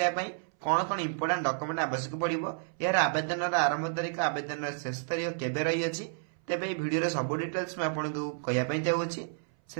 पई कौन इंपोर्टेंट डॉक्यूमेंट आवश्यक पड़िबो, यार आवेदन आरंभ तारीख आवेदन शेष तारीख केबे रही अछि, तेबे ए वीडियो रे सब डिटेल्स मैं आपनको कहया पई चाहूछि।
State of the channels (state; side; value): silent; left; 57 dB below the other